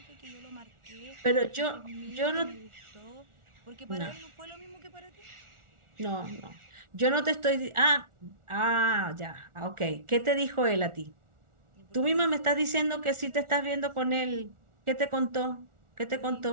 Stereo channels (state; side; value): late; left; 1.4 ms